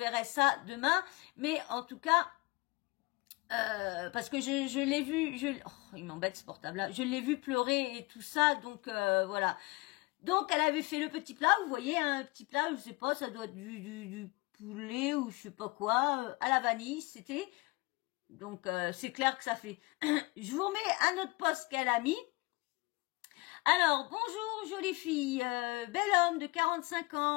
ça demain. Mais en tout cas, parce que je l'ai vu, il m'embête ce portable-là. Je l'ai vu pleurer et tout ça, donc voilà. Donc elle avait fait le petit plat, vous voyez, un petit plat, je sais pas, ça doit être du poulet ou je sais pas quoi, à la vanille, c'était. Donc c'est clair que ça fait. Je vous remets un autre post qu'elle a mis. Alors, bonjour jolie fille, bel homme de 45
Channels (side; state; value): right; quieter; 23.9 dB